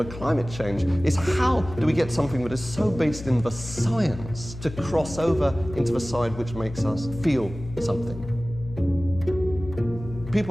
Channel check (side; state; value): left; noise; hum, 12 dB below the sound